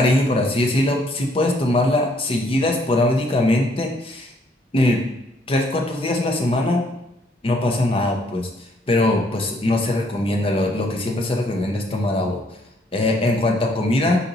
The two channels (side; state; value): both; normal; correlation 0.66